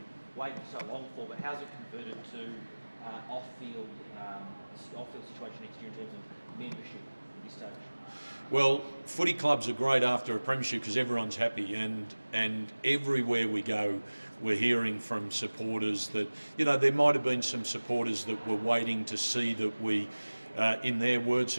waited so long for, but how's it converted to off-field situation next year in terms of membership at this stage? Well, footy clubs are great after a premiership because everyone's happy, and everywhere we go, we're hearing from supporters that, there might have been some supporters that were waiting to see that we, in their words,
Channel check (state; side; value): inverted; both; correlation -1.00